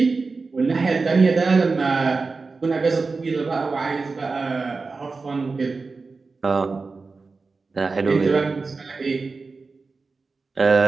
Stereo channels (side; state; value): left; quieter; 4.1 dB